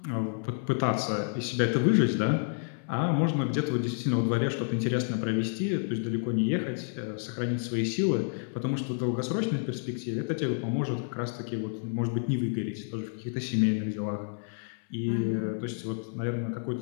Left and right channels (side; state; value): right; silent; 58 dB below the other